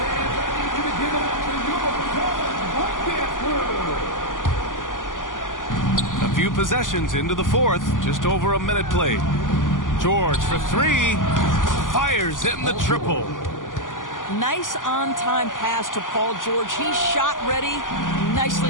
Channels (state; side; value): late; right; 0.88 ms